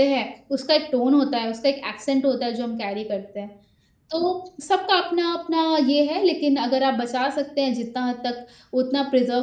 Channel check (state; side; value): identical; both; correlation 1.00